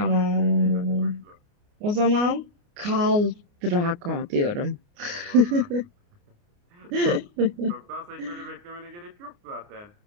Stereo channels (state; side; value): late; left; 29 ms